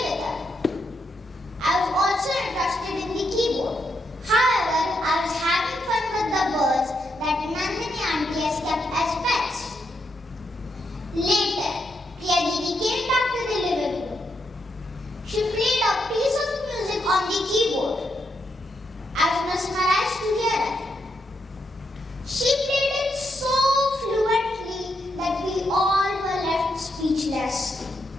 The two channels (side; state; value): both; normal; correlation 0.81